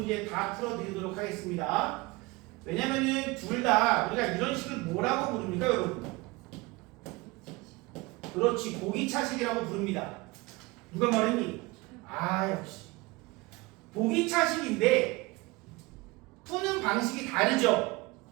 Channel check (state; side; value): quieter; left; 23.1 dB